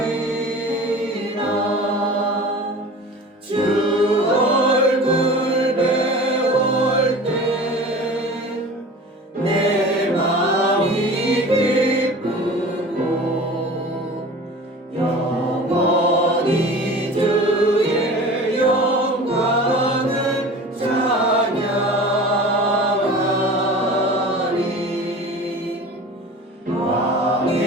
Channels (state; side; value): normal; both; correlation 0.38